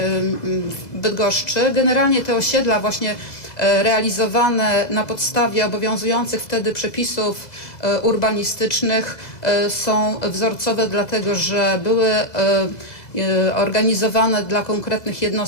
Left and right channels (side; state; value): right; late; 2.0 ms